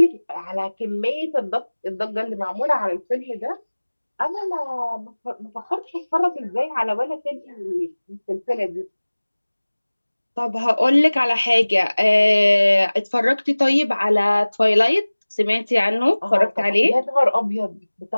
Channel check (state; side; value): inverted; both; correlation -1.00